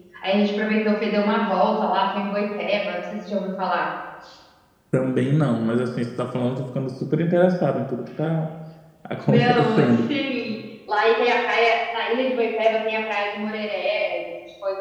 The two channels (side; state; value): both; identical; correlation 1.00